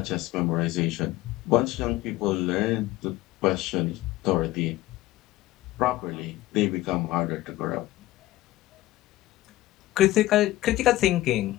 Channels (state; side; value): quieter; right; 16.5 dB